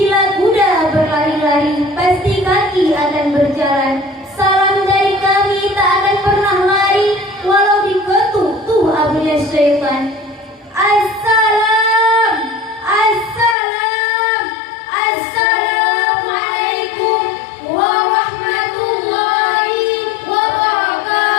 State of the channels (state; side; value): drops out; right; at 13.6 s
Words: kuda berlari-lari, pasti kaki akan berjalan. Salam dari kami tak akan pernah lari, walau diketuk tuh abunya syaitan. Assalam, assalam, assalamualaikum warahmatullahi